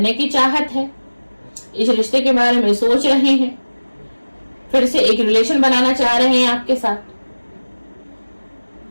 की चाहत है, इस रिश्ते के बारे में सोच रहे हैं, फिर से एक रिलेशन बनाना चाह रहे हैं आपके साथ।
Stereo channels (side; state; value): both; inverted; correlation -1.00